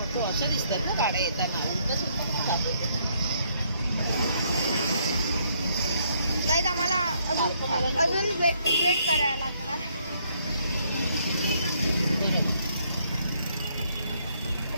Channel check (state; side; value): inverted; both; correlation -0.70